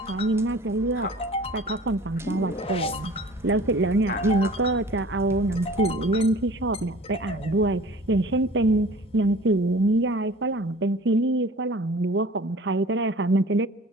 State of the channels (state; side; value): normal; both; correlation 0.45